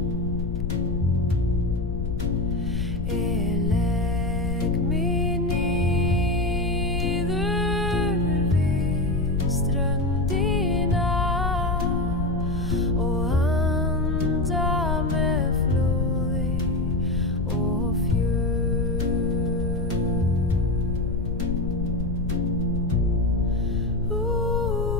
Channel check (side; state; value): left; noise; rumble, 2 dB below the sound